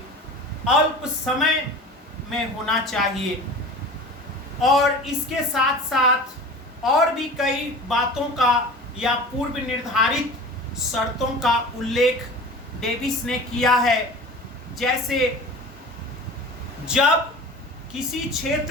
अल्प समय में होना चाहिए। और इसके साथ साथ और भी कई बातों का या पूर्व निर्धारित शर्तों का उल्लेख डेविस ने किया है। जैसे जब किसी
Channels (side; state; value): both; normal; correlation 0.37